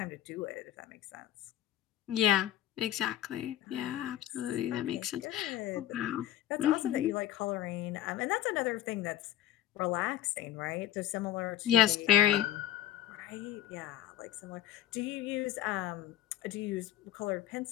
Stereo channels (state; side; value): quieter; right; 12.3 dB